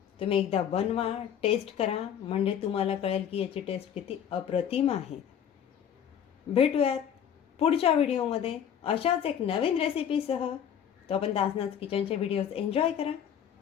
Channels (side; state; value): right; quieter; 8.9 dB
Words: तुम्ही एकदा बनवा, टेस्ट करा, म्हणजे तुम्हाला कळेल की याची टेस्ट किती अप्रतिम आहे. भेटूयात पुढच्या व्हिडिओमध्ये अशाच एक नवीन रेसिपीसह. तोपर्यंत आसनाज किचनचे व्हिडिओज एन्जॉय करा.